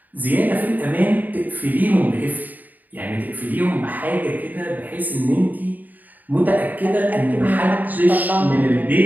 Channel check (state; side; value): late; left; 0.083 ms